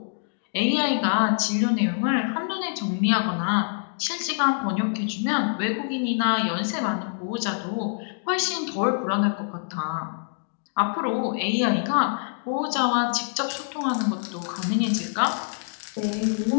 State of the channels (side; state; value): right; silent; digital silence